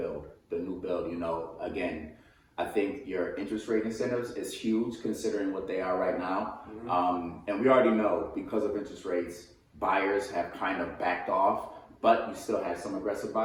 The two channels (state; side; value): identical; both; correlation 1.00